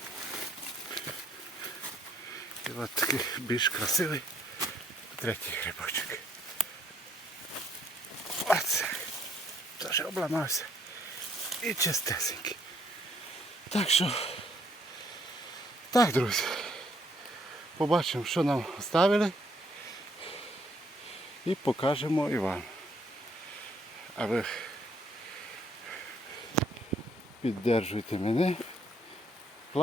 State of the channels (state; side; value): normal; both; correlation 0.67